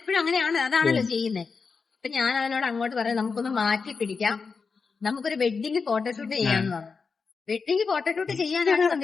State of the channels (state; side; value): quieter; right; 5.0 dB